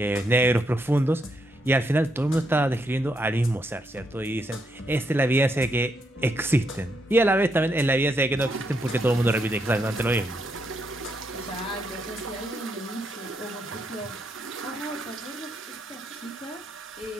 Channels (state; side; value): normal; both; correlation 0.78